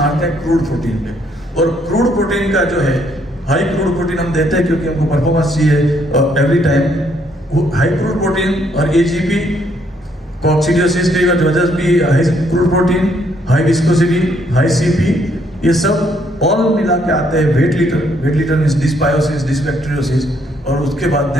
हैं क्रूड प्रोटीन पे, और क्रूड प्रोटीन का जो है हाई क्रूड प्रोटीन हम देते हैं क्योंकि हमको परफॉर्मेंस चाहिए every time. High crude protein और एजीपी कॉक्सिडियोसिस की वजह भी high crude protein, high viscosity, high CP, ये सब ऑल मिला के आते हैं wet litter. Wet litter means dysbiosis, dysbacteriosis, और उसके बाद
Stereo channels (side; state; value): both; normal; correlation 0.70